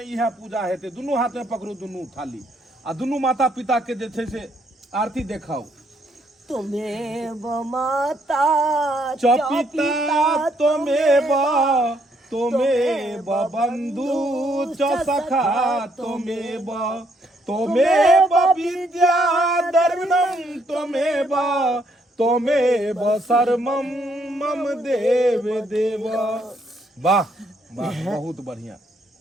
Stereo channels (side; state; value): both; normal; correlation 0.71